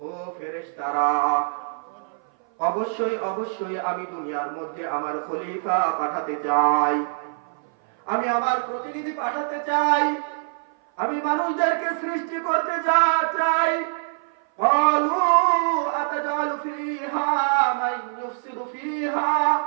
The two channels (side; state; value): left; silent; 58 dB below the other